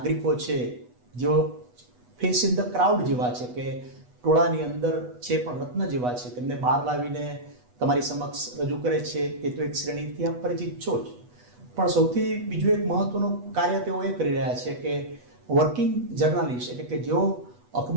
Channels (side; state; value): left; late; 8.2 ms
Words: છે, જેઓ ફેસ ઇન ધ ક્રાઉડ જેવા છે, કે ટોળાની અંદર છે પણ રત્ન જેવા છે, તેમને બહાર લાવીને તમારી સમક્ષ રજૂ કરે છે. તે તો એક શ્રેણીથી આપ પરિચિત છો જ. પણ સૌથી બીજું એક મહત્વનું કાર્ય તેઓ એ કરી રહ્યા છે કે વર્કિંગ જર્નાલિસ્ટ, એટલે કે જેઓ